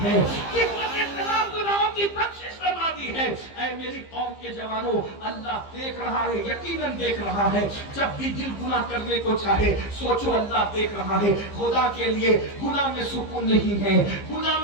ہے, کفل کے تمام گناہوں کی بخشش فرما دی ہے. اے میری قوم کے جوانوں, اللہ دیکھ رہا ہے, یقیناً دیکھ رہا ہے. جب بھی دل گناہ کرنے کو چاہے سوچو اللہ دیکھ رہا ہے. خدا کے لیے گناہ میں سکون نہیں ہے, گناہ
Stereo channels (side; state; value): right; late; 15 ms